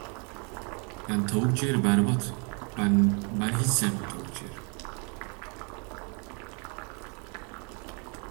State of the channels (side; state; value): left; quieter; 35.3 dB